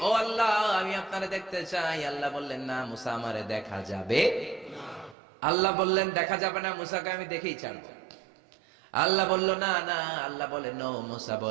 ও আল্লাহ আমি আপনারে দেখতে চাই। আল্লাহ বললেন, না মুসা আমারে দেখা যাবে না। আল্লাহ বললেন, দেখা যাবে না, মুসাকে আমি দেখেই ছাড়বো। আল্লাহ বলল, না না। আল্লাহ বলে নো, মুসা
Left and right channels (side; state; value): left; drops out; at 5.2 s